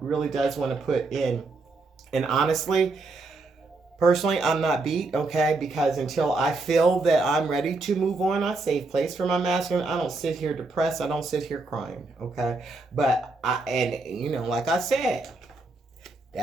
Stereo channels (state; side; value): quieter; left; 3.5 dB